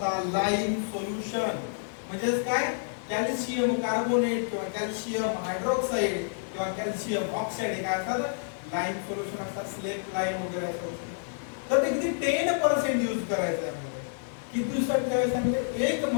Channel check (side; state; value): right; silent; digital silence